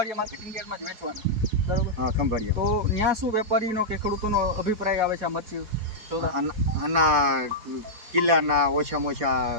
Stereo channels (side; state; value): left; late; 4.3 ms